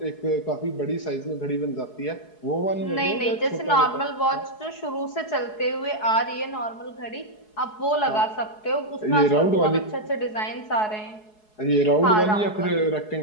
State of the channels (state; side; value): late; right; 4.7 ms